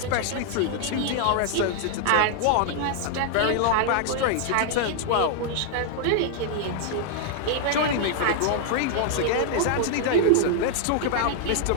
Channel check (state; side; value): different; both; correlation 0.00